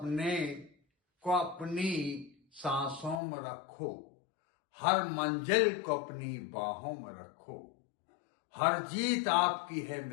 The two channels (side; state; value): right; drops out; at 3.2 s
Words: को अपनी सांसों में रखो, हर मंजिल को अपनी बाहों में रखो। हर जीत आपकी है